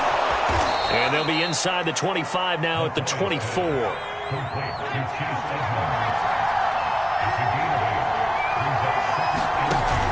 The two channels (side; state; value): both; identical; correlation 1.00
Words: And they'll be inside the 25 now at the 24.